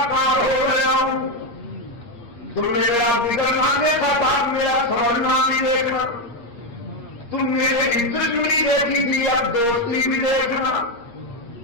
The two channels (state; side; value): late; right; 8.5 ms